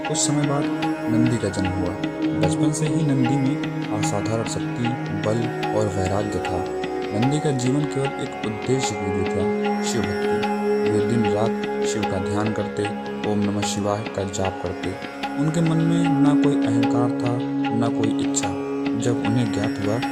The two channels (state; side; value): identical; both; correlation 1.00